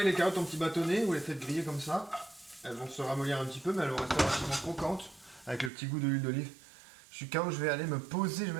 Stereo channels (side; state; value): left; drops out; at 5.7 s